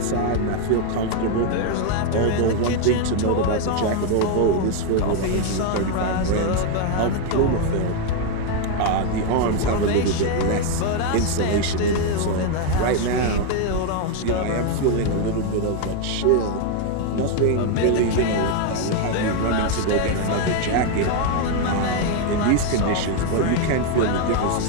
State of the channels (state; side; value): different; both; correlation 0.01